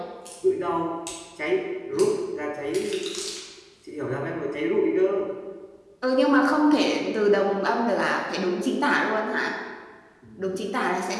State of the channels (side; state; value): both; identical; correlation 1.00